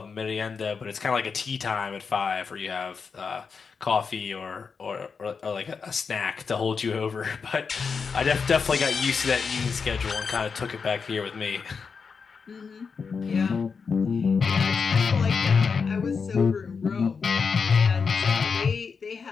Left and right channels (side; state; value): right; quieter; 5.5 dB